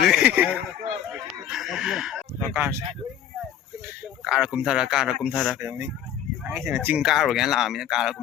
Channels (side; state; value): right; quieter; 10.1 dB